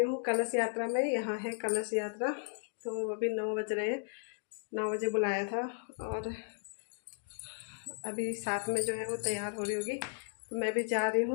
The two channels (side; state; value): right; silent; digital silence